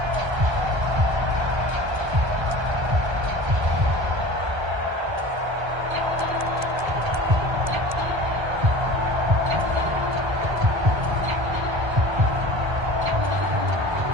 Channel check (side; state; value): left; late; 1.3 ms